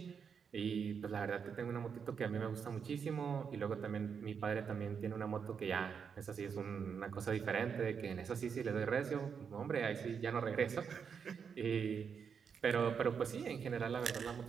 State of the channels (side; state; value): left; quieter; 6.6 dB